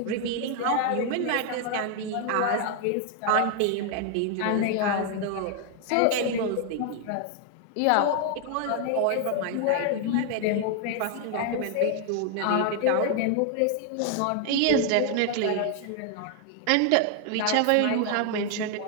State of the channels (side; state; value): both; different; correlation 0.00